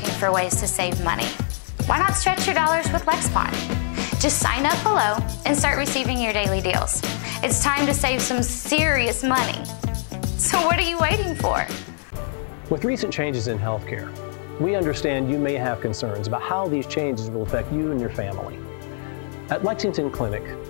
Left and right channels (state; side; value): silent; right; 63 dB below the other